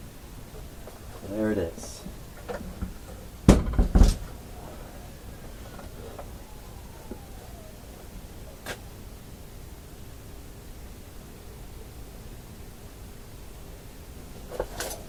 There it is.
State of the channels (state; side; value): identical; both; correlation 1.00